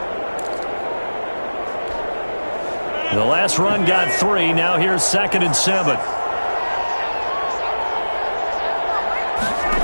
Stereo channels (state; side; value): inverted; both; correlation -1.00